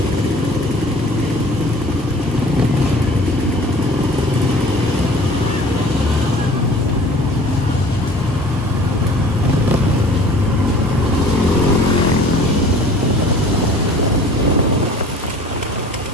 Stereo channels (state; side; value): normal; both; correlation 0.47